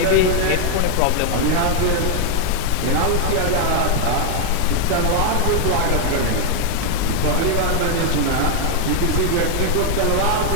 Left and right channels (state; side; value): different; both; correlation 0.00